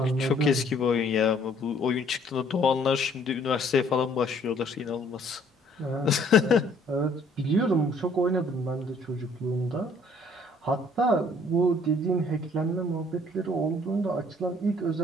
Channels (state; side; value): normal; both; correlation 0.60